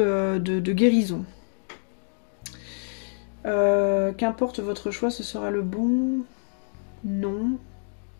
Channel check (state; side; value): silent; right; 61 dB below the other